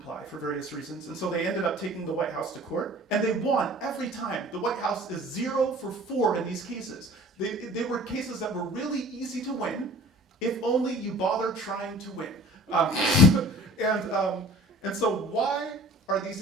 for various reasons, and so they ended up taking the White House to court, and they won every time. The White House is 0 for 4 in these cases. They were cases that were really easy to win, if only you bother trying to win. And so why are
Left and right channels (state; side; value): normal; both; correlation 0.46